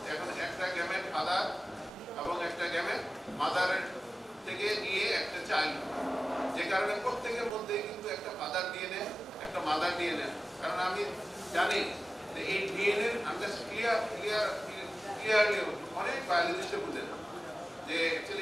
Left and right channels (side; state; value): both; normal; correlation 0.96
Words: এখন একটা গ্যামেট ফাদার এবং একটা গ্যামেট মাদারের থেকে নিয়ে একটা চাইল্ড, যে কারণে প্রত্যেকের মধ্যে কিন্তু একটা ফাদার ডিএনএ একটা মাদার ডিএনএ। কারণ আমি জানি যে এই ডিএনএ আমরা ক্লিয়ারলি অনেক বায়োলজিস্টে বুঝে না যে